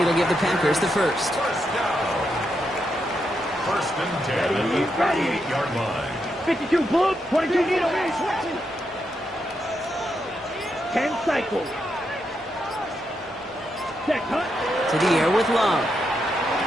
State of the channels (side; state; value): both; normal; correlation 0.82